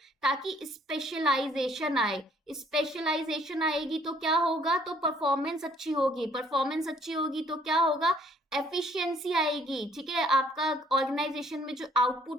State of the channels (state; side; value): normal; both; correlation 0.61